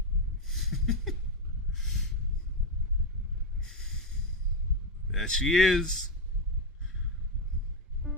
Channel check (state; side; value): normal; both; correlation 0.09